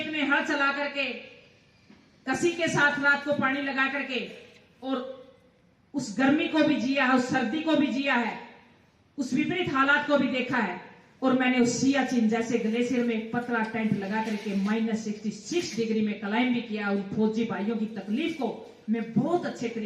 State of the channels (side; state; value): both; identical; correlation 1.00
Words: में हल चला करके कसी के साथ रात को पानी लगा करके और उस गर्मी को भी जिया है, उस सर्दी को भी जिया है, उस विपरीत हालात को भी देखा है। और मैंने उस सियाचिन जैसे ग्लेशियर में पतला टेंट लगा करके -66 डिग्री में क्लाइंब भी किया। उन फौजी भाइयों की तकलीफ को मैं बहुत अच्छे